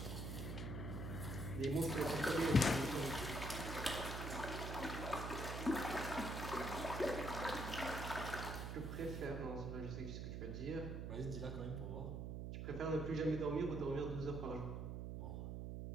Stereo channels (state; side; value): noise; right; hum, 4 dB below the sound